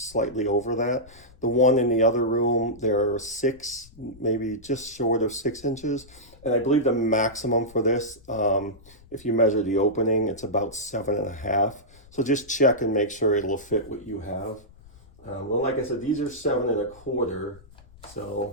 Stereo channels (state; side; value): noise; left; rumble, 24 dB below the sound